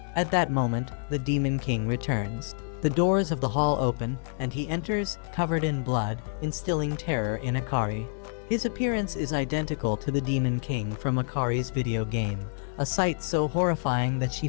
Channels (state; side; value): silent; right; 57 dB below the other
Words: At that moment, the Demon King returns. The doors of the hall open, and he enters covered in blood, instilling terror in Akari. His appearance is identical to the Demon King from Akari's video game, a sight so horrifying that she